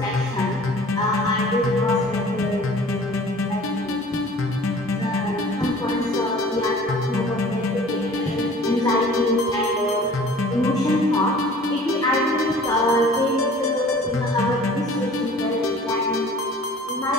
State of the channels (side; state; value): both; normal; correlation 0.47